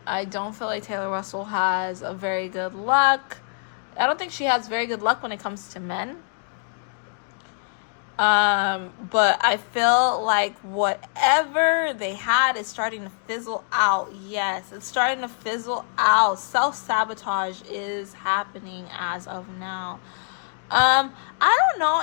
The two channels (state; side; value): silent; right; digital silence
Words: I don't feel like Taylor Russell has a very good luck. I don't think she has very good luck when it comes to men. But I feel like whatever they had is starting to fizzle out. Yes, it's starting to fizzle out. Self-sabotage is happening as of now. I don't know